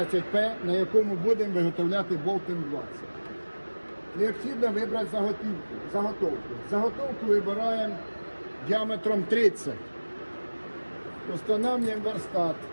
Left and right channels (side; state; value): both; inverted; correlation -1.00